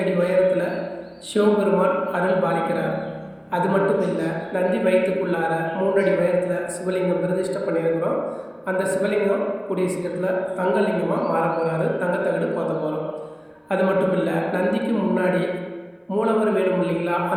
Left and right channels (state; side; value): identical; both; correlation 1.00